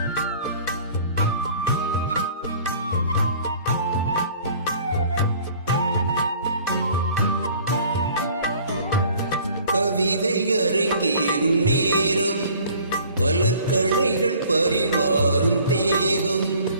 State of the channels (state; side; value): inverted; both; correlation -0.52